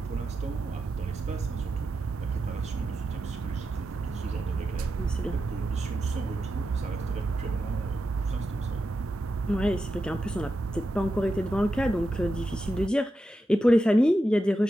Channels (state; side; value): normal; both; correlation 0.88